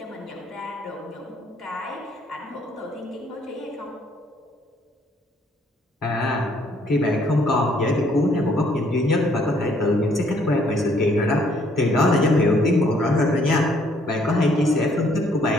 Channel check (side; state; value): both; normal; correlation 0.65